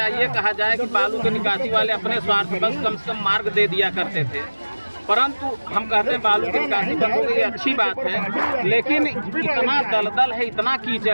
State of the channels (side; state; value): both; inverted; correlation -1.00